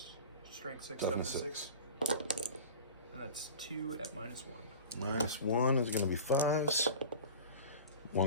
Strength 6, toughness 6. And that's 2 at -1. -1 is going to be 5s.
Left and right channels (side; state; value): both; inverted; correlation -0.37